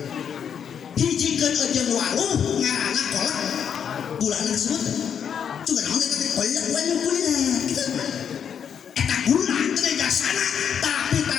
hiji keun ejeung waluh ngaranna kolak gulana kasebut juga naon eta teh kolak waluh gula gitu eta gula teh jasana tapi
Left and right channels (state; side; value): quieter; right; 7.9 dB